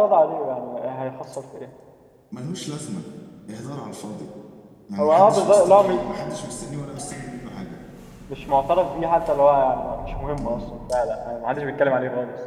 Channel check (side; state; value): both; identical; correlation 1.00